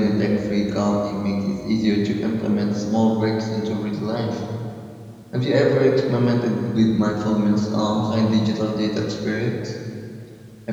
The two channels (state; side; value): identical; both; correlation 1.00